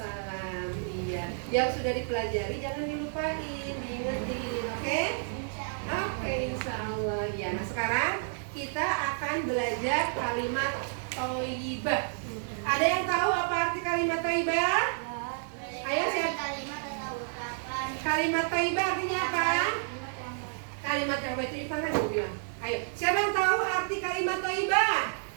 Iya. Yang sudah dipelajari jangan dilupain, diingetin, oke? Oke, insya Allah. Ya. Nah sekarang kita akan belajar kalimat thayyibah. Ada yang tahu apa arti kalimat thayyibah? Ayo siapa? Kalimat thayyibah artinya apa? Kalimat yang baik itu kan gue bilang. Ayo, siapa yang tahu arti kalimat thayyibah?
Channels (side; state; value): left; silent; 58 dB below the other